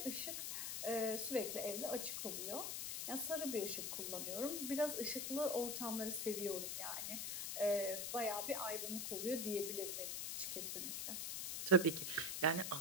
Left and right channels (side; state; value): left; noise; hiss, 2 dB below the sound